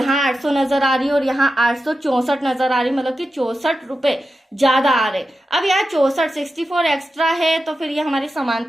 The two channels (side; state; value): both; normal; correlation 0.91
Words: 800 नजर आ रही है और यहाँ 864 नजर आ रही है, मतलब कि 64 रुपए ज्यादा आ रहे। अब यहाँ 64 एक्स्ट्रा है, तो फिर ये हमारी